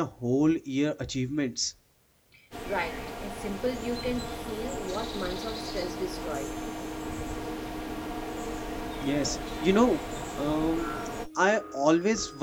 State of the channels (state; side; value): identical; both; correlation 1.00